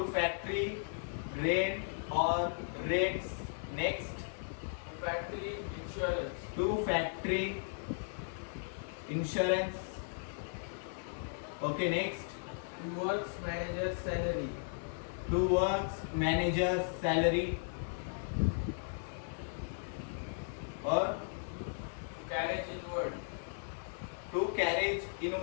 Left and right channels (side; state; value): right; silent; 54 dB below the other